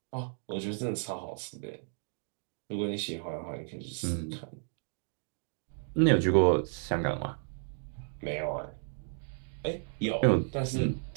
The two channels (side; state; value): left; silent; 56 dB below the other